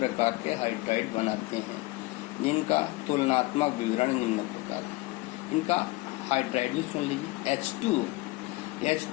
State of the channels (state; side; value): quieter; right; 22.0 dB